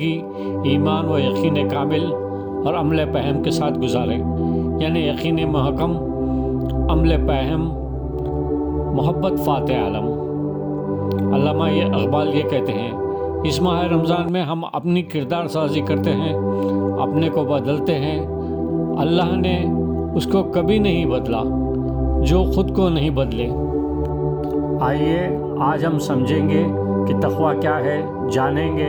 ایمان و یقین کامل اور عمل فہم کے ساتھ گزاریں، یعنی یقین محکم، عمل فہم، محبت فاتح عالم۔ علامہ اقبال یہ کہتے ہیں، اس ماہ رمضان میں ہم اپنی کردار سازی کرتے ہیں، اپنے کو بدلتے ہیں۔ اللہ نے اس کو کبھی نہیں بدلا جو خود کو نہیں بدلے۔ آئیے آج ہم سمجھیں گے کہ تقوی کیا ہے، جانیں گے۔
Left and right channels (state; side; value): identical; both; correlation 1.00